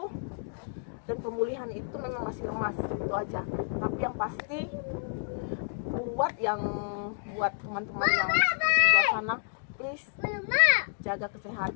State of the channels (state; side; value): silent; right; digital silence